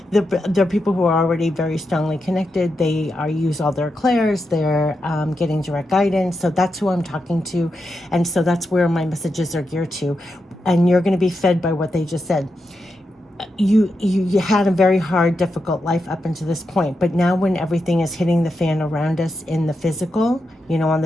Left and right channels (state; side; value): normal; both; correlation 0.86